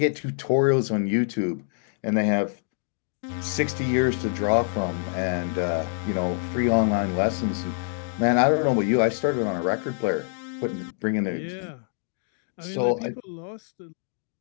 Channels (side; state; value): right; silent; digital silence